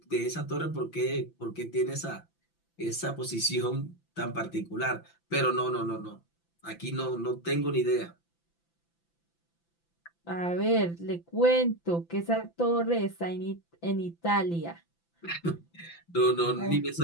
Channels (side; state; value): right; late; 5.9 ms